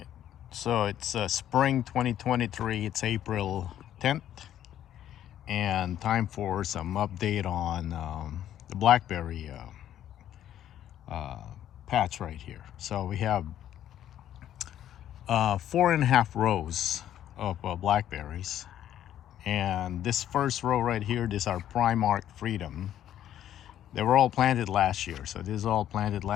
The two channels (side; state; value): right; quieter; 11.3 dB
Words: so it's spring 2023. It's April 10th, and time for some update on the Blackberry patch right here. So we have 4.5 rows of Blackberries, and this first row right here, this is our Primark Freedom. They were all planted last year, so this is all planted